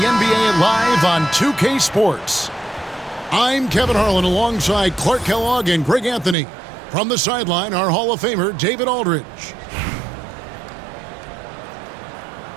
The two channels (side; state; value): left; drops out; at 6.4 s